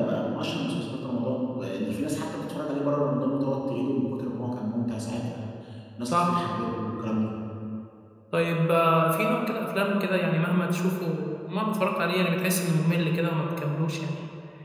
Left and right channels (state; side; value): identical; both; correlation 1.00